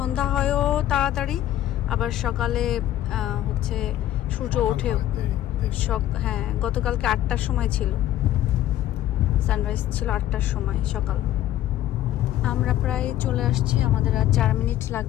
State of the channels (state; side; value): quieter; right; 12.9 dB